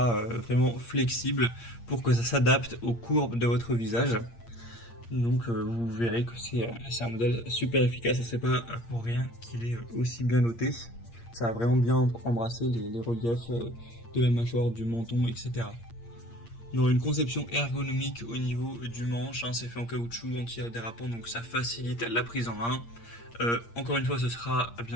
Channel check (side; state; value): right; late; 8.6 ms